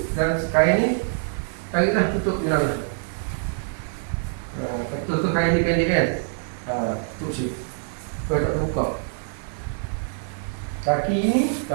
dan kain ni tariklah tutup jenazah. Tutup kain ni pendek kan? Tutup sini. Supaya tak terbuka. Kaki ni,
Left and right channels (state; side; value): silent; left; 62 dB below the other